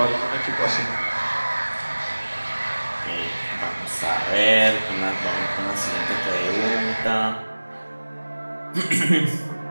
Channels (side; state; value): both; inverted; correlation -1.00